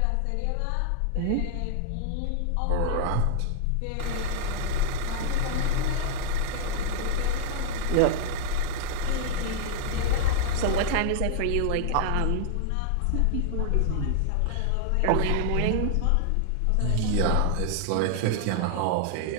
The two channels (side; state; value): both; different; correlation -0.01